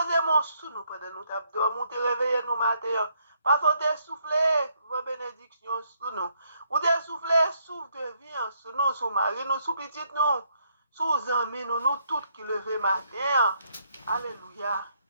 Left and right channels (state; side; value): inverted; both; correlation -0.72